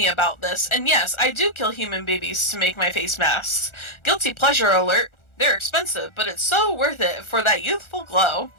about this, and yes, I do kill human babies to make my face masks. Guilty pleasure alert. They're expensive, but it's so worth it for that youthful glow.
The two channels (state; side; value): late; right; 1.4 ms